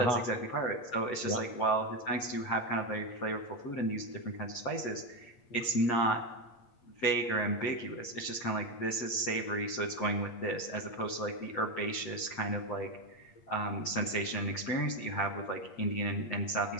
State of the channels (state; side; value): late; right; 8.5 ms